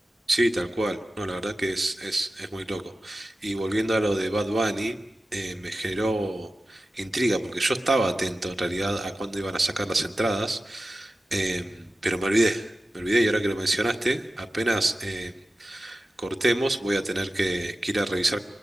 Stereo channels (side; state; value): both; normal; correlation 0.94